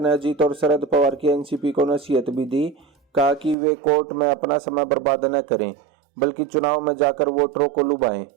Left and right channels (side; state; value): left; drops out; at 3.6 s